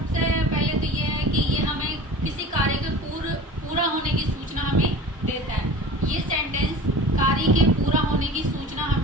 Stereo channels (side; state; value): both; normal; correlation 0.38